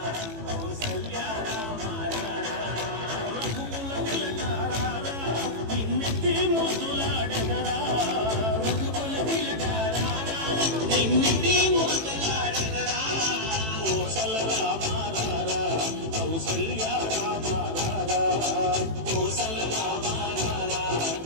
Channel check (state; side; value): late; left; 18 ms